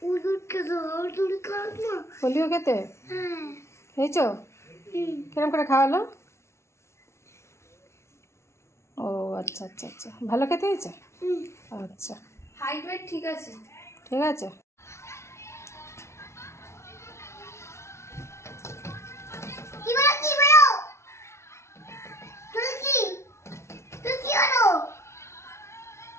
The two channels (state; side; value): late; right; 0.13 ms